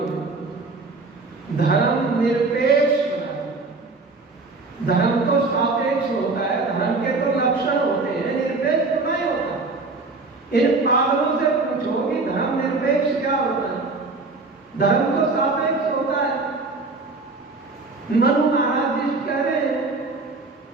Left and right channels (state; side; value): quieter; left; 3.7 dB